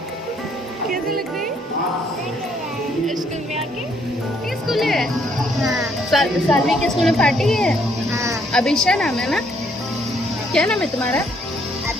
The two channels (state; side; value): normal; both; correlation 0.68